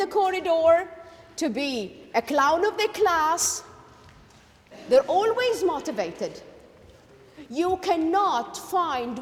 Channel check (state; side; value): identical; both; correlation 1.00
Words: corridor, to be a clown of the class. They're always motivated. You cannot